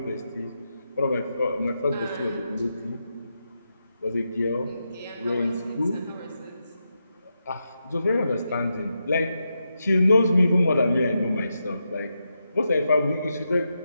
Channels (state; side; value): inverted; both; correlation -0.86